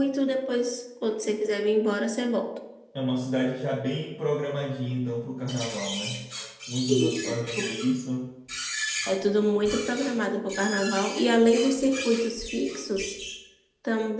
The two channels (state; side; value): identical; both; correlation 1.00